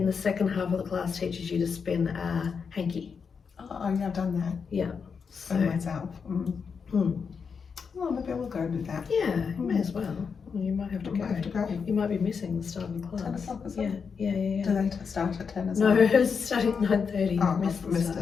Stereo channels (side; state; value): right; quieter; 5.9 dB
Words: the second half of the class, teaches you to spin a hanky. Oh, yeah, I've done that. Yeah. So myself. Well, maybe I will go and do that. Yeah, you may as well. Well, you might have to I go. might have to go. You might be missing the start of the class. 10 o'clock, is Yeah, it? yeah. Do they start at 10 as No, well? it's starting at 9:30. Oh, You've missed I've the missed